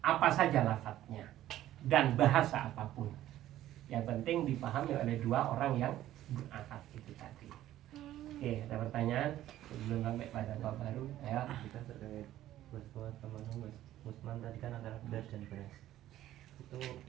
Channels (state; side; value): quieter; left; 13.5 dB